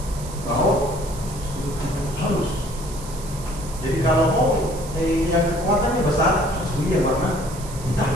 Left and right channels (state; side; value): noise; right; hiss, 15 dB below the sound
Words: halus. Jadi kalau mau yang kekuatannya besar, harus beli yang warna